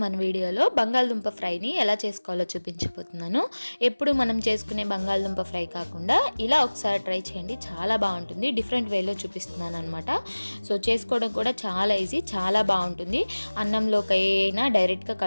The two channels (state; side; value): inverted; both; correlation -1.00